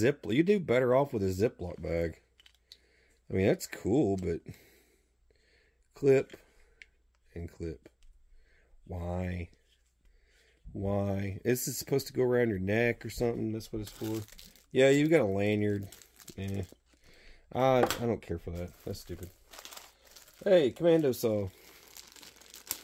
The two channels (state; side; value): identical; both; correlation 1.00